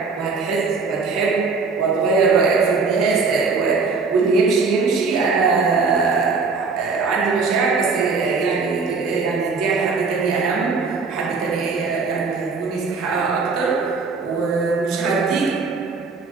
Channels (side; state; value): left; quieter; 4.5 dB